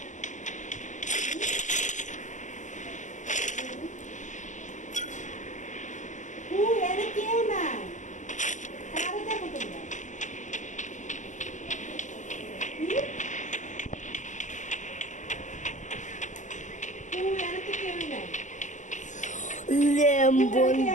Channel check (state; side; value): late; right; 0.36 ms